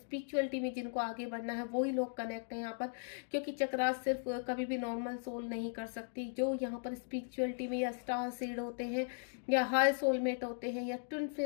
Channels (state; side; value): silent; right; digital silence